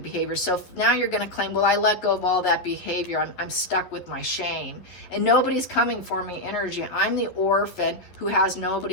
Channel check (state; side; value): late; right; 11 ms